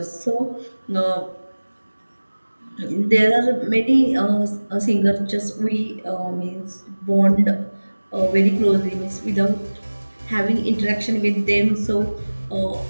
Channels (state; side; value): inverted; both; correlation -1.00